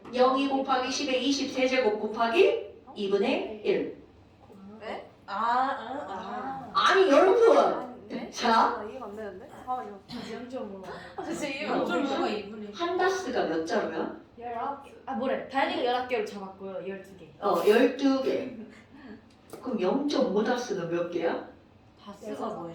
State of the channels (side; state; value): both; identical; correlation 1.00